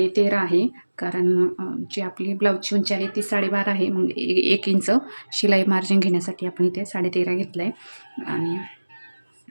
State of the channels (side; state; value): both; inverted; correlation -1.00